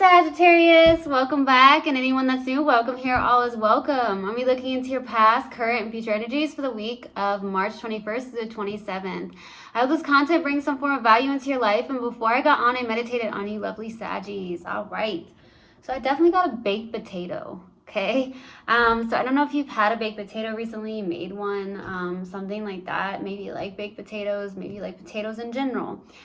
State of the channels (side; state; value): both; identical; correlation 1.00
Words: welcome back, and anyone that's new, welcome here. All is welcome. I'll be looking into your past, current, and future energies for the week of March 21st to the 27th. I hope this content brings some form of value into your life, and before I got on, I meditated on you lovely Saggies. All right, so I definitely got a baked potato, okay? So I don't know if you've had a baked potato recently, made one, something like that. Maybe you like baked potatoes, maybe you like potatoes in general,